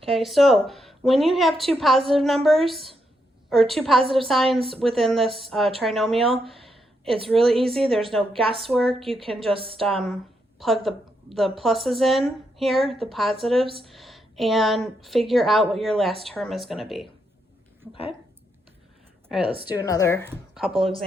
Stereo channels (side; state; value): both; normal; correlation 0.80